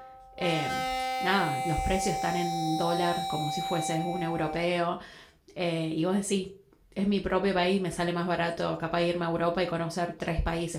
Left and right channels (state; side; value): identical; both; correlation 1.00